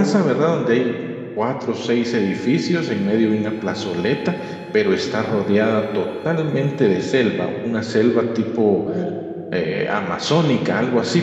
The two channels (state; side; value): identical; both; correlation 1.00